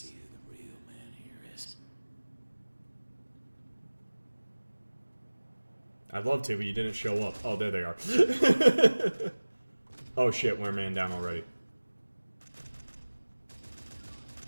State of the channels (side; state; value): both; inverted; correlation -1.00